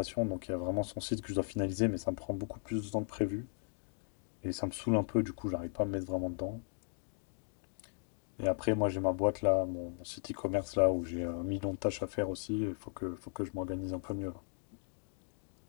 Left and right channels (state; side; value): silent; right; digital silence